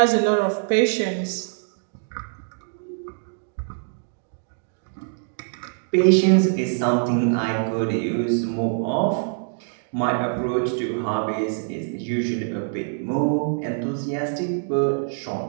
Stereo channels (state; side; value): silent; left; digital silence